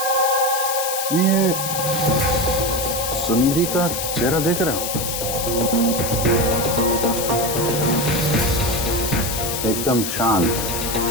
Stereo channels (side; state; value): left; noise; hiss, 3 dB below the sound